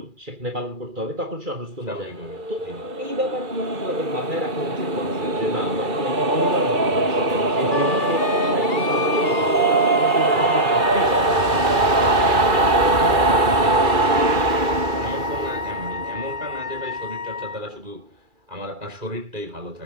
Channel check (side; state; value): left; late; 2.3 ms